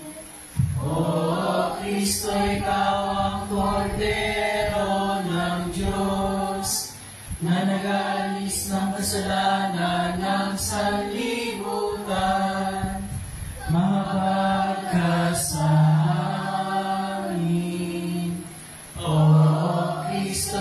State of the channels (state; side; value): identical; both; correlation 1.00